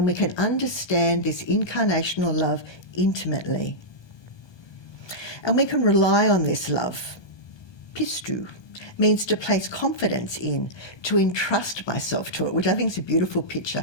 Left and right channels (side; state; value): right; late; 1.2 ms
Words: we can understand this incarnational love intimately. And we can rely on this love, pistu, means to place confidence in, to entrust myself to it, which I think is a beautiful picture,